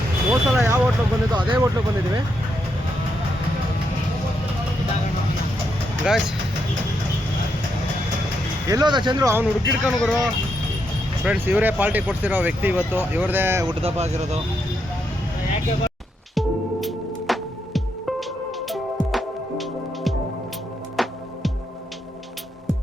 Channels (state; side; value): normal; both; correlation 0.80